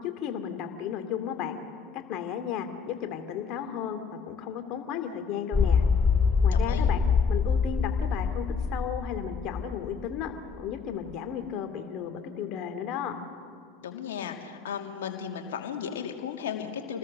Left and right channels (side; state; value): right; quieter; 5.9 dB